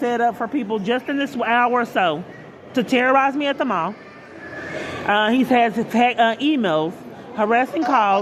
up for people just in this hour or so to terrorize me at the mall. He has emails, harassing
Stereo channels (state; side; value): identical; both; correlation 1.00